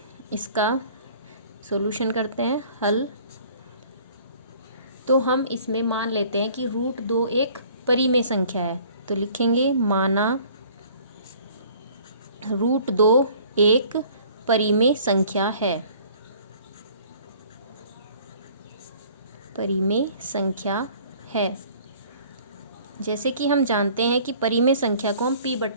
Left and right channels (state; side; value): inverted; both; correlation -0.53